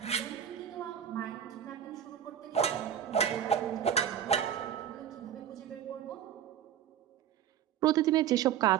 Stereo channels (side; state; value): left; quieter; 9.6 dB